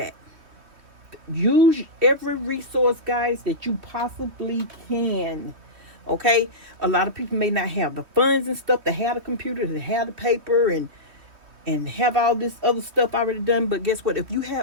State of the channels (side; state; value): left; late; 3.1 ms